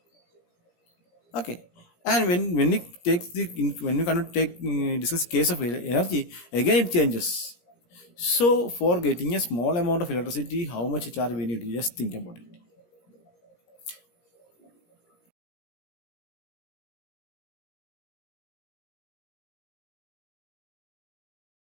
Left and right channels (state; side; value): late; right; 17 ms